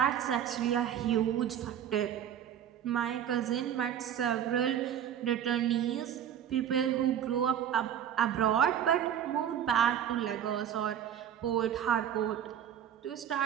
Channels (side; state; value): left; quieter; 9.7 dB